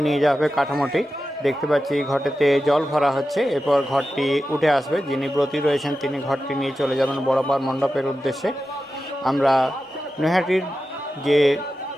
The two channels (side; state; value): both; normal; correlation 0.92